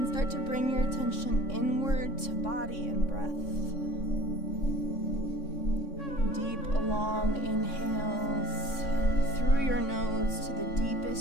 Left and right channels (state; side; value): late; right; 3.6 ms